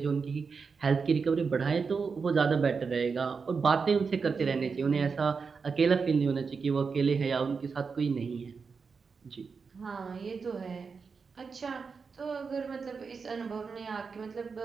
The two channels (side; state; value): left; quieter; 5.2 dB